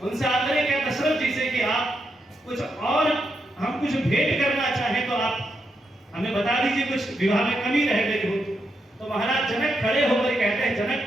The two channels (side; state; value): both; normal; correlation 0.82